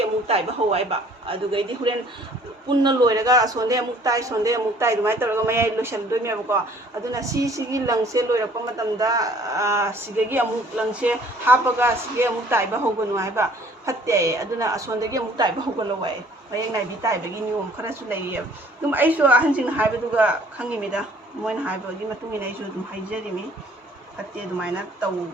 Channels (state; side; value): normal; both; correlation 0.56